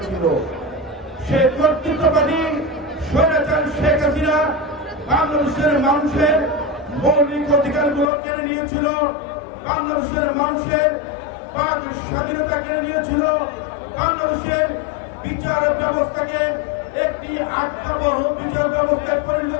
সেই কর্তৃত্ববাদী স্বৈরাচারী শেখ হাসিনা বাংলাদেশের মানুষের মৌলিক অধিকারগুলো কেড়ে নিয়েছিল, বাংলাদেশের মানুষের বাক স্বাধীনতা কেড়ে নিয়েছিল, বাংলাদেশের বিচার ব্যবস্থাকে একটি আত্মবহ বিচার ব্যবস্থায় পরিণত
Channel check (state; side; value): drops out; right; at 8.1 s